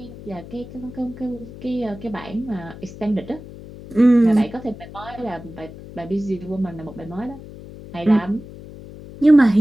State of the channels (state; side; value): noise; left; hum, 15 dB below the sound